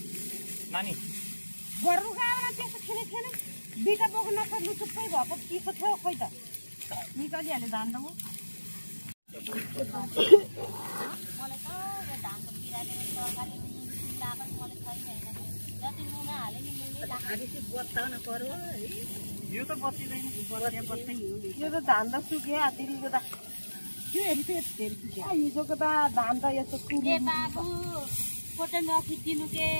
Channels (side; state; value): both; inverted; correlation -1.00